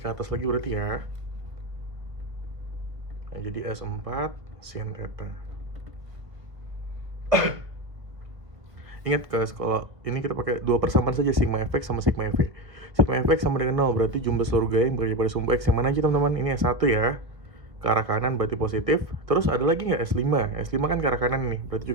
atas lagi berarti ya. Nah, jadi S4 sin theta. Ingat guys, kalau ini kita pakai dua persamaan saja, sigma fx sama sigma fv. Sigma fx sama dengan 0, berarti jumlah seluruh gaya yang bekerja pada sumbu X yang mana aja teman-teman. Ini S1 ya, ke arah kanan berarti positif. Terus ada lagi nggak S5? S5 kan ke arah kanan nih, berarti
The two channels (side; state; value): left; late; 1.2 ms